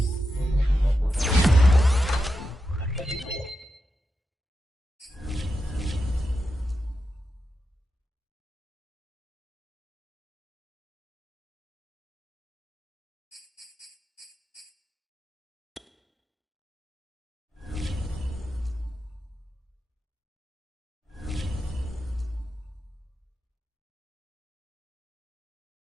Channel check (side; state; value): both; normal; correlation 0.88